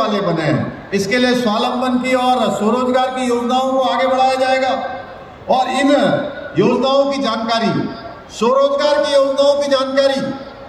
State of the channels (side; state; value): both; identical; correlation 1.00